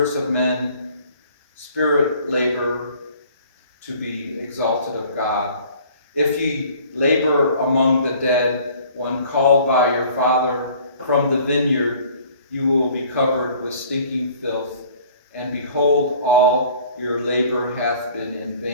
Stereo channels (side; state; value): both; inverted; correlation -0.52